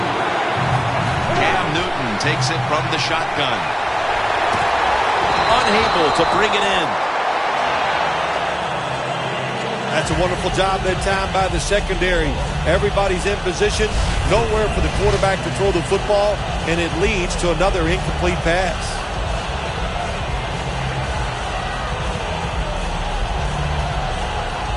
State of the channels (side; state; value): both; identical; correlation 1.00